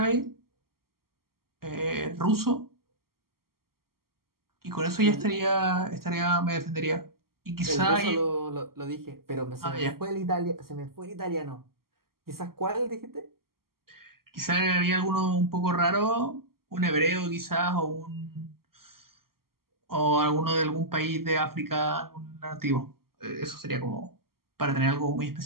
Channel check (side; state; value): left; late; 0.93 ms